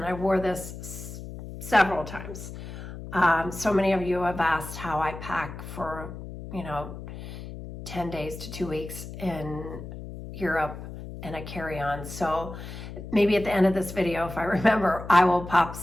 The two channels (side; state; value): left; noise; hum, 11 dB below the sound